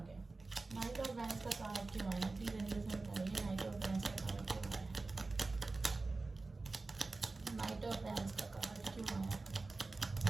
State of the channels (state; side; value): quieter; left; 3.5 dB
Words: गया। नाइट ऑफ वैंड्स का कार्ड क्यों आया है प्लीज एंजल्स में बताइए? नाइट ऑफ वैंड्स का कार्ड क्यों आया है? नाइट ऑफ वैंड्स का कार्ड क्यों आया है?